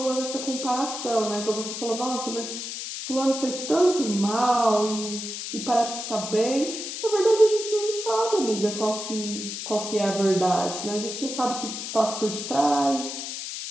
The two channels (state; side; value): noise; left; hiss, 6 dB below the sound